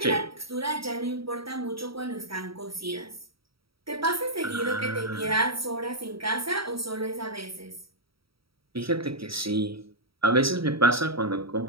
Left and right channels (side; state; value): left; late; 0.75 ms